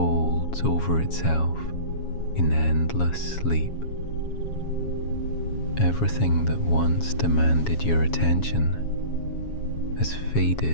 over itself in endless sleep. Everything that once demanded your attention has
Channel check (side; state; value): right; late; 7.2 ms